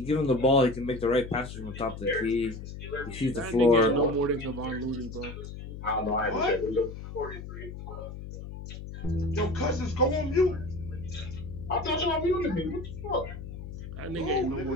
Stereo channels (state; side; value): noise; left; hum, 10 dB below the sound